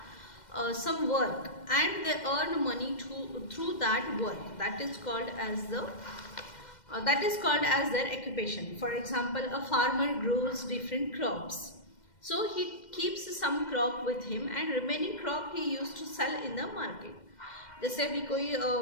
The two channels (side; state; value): right; late; 2.1 ms